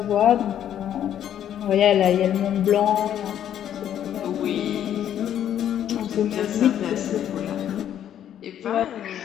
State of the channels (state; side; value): quieter; right; 10.3 dB